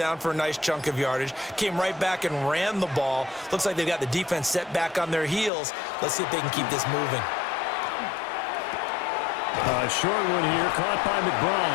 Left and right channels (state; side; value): drops out; right; at 5.5 s